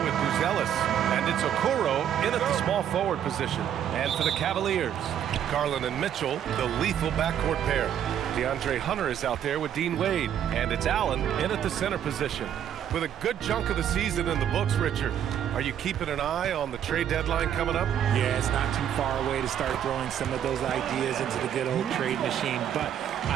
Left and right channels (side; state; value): left; quieter; 9.7 dB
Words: with Buzelis, and it's Okoro in at the small forward position. And for the Cavaliers, Garland and Mitchell, the lethal backcourt pair. DeAndre Hunter is out there with Dean Wade, and it's Allen in at the center position. With a good chunk of the season in the books, Richard, are you keeping an eye on the trade deadline coming up? Yeah, it's not too far away to start throwing some of those ideas into the good old trade machine, but